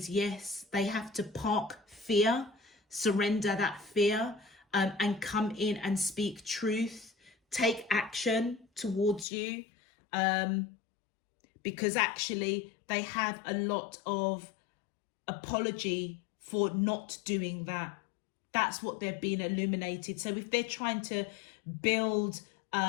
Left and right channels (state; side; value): drops out; right; at 9.2 s